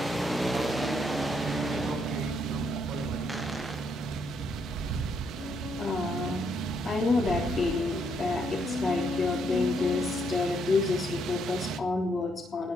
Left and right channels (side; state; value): both; normal; correlation 0.74